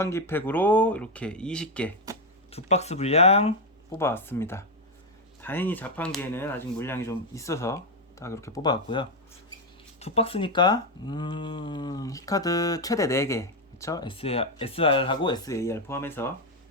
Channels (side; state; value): both; normal; correlation 0.06